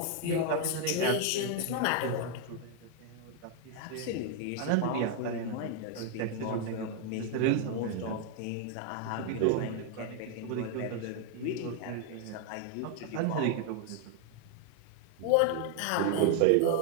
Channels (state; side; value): different; both; correlation 0.00